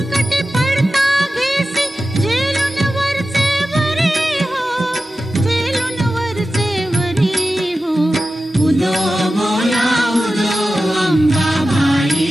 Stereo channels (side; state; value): both; normal; correlation 0.93